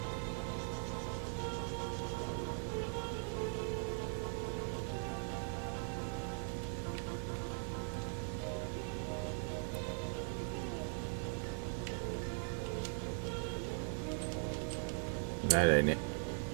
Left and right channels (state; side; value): silent; left; 51 dB below the other